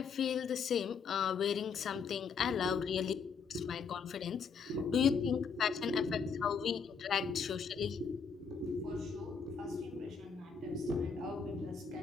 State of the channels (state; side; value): quieter; right; 5.8 dB